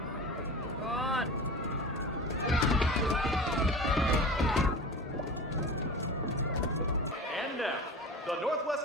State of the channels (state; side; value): normal; both; correlation 0.33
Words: God. And now, the Northwest